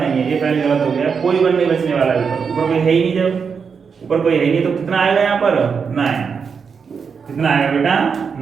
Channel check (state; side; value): quieter; left; 6.0 dB